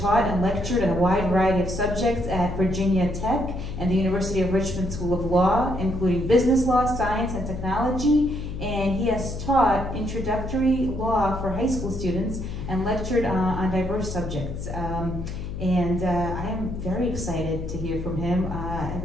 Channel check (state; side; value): noise; left; hum, 7 dB below the sound